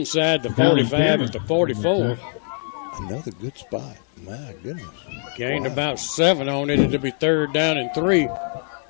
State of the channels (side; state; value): right; silent; 57 dB below the other